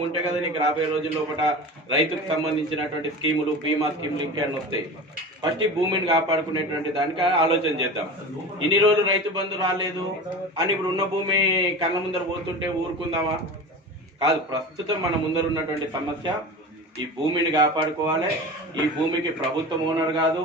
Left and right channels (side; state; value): both; normal; correlation 0.32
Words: ఉంటే కదా నీకు రాబోయే రోజుల్లో ఒకట రైతుకు సంబంధించినటువంటి స్కీములు, బీమా స్కీములు ఇంకేమైనా వస్తాయి. ఫస్ట్ ఈ భూమిని కాపాడుకునేటువంటి దానికి ఆలోచన చేద్దాం. ఇన్ని రోజులు రైతు బంధు రాలేదు అని ఇప్పుడు ఉన్న భూమి కళ్ళ ముందర పోతుంటే ఊరుకుందామా? కాదు. ప్రస్తుతం మన ముందర ఉన్నటువంటి సమస్య ఈ భూమిని కాపాడుకోవాలి. ఈ భూమికి ప్రభుత్వం ఓనర్ కాదు,